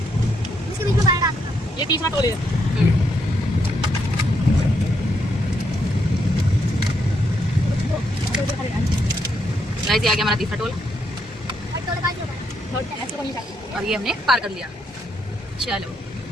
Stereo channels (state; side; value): normal; both; correlation 0.77